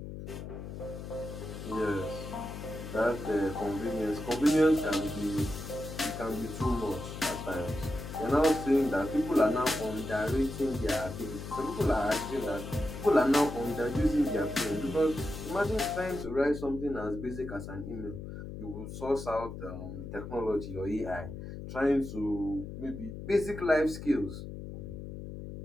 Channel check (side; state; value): left; noise; hum, 9 dB below the sound